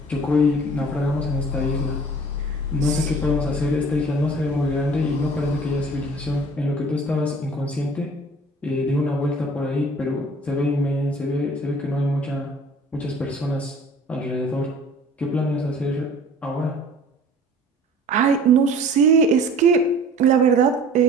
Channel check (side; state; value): both; normal; correlation 0.47